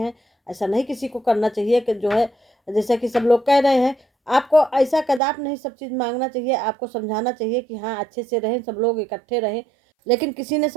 ऐसा नहीं किसी को करना चाहिए कि जो है जैसा कि सब लोग कह रहे हैं, आपको ऐसा कदाप नहीं सब चीज़ मांगना चाहिए। आपको समझाना चाहिए कि हाँ अच्छे से रहें, सब लोग इकट्ठे रहें। लेकिन किसी ने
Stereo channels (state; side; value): drops out; left; at 5.2 s